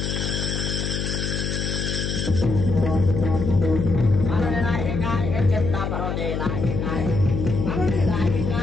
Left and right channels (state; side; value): noise; left; hum, 2 dB below the sound